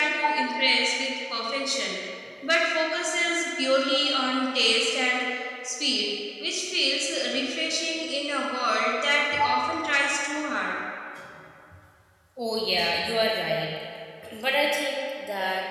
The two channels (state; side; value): identical; both; correlation 1.00